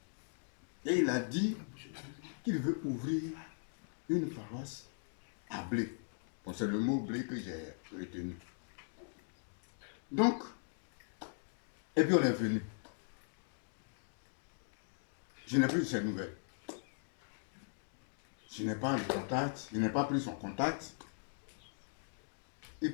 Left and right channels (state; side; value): silent; right; digital silence